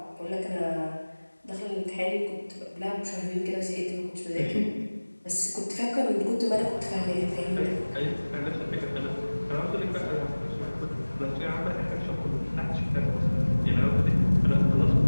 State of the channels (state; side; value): inverted; both; correlation -1.00